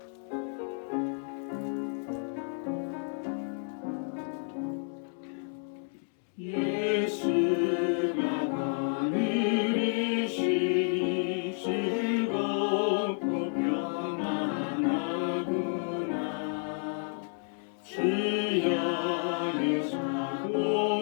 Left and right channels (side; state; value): right; silent; 57 dB below the other